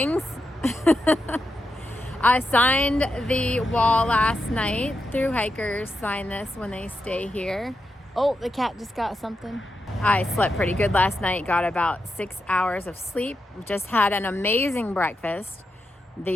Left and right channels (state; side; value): normal; both; correlation 0.87